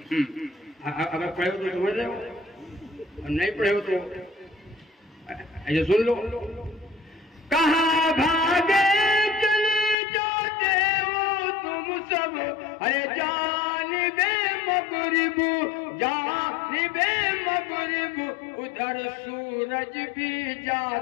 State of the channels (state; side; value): drops out; right; at 10.0 s